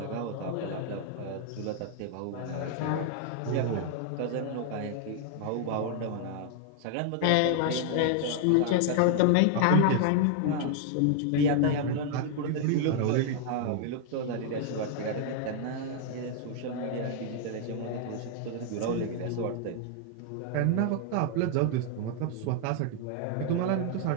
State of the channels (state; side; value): different; both; correlation 0.00